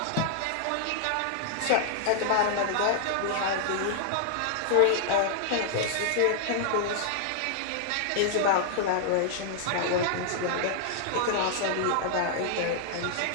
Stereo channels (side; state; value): both; different; correlation -0.01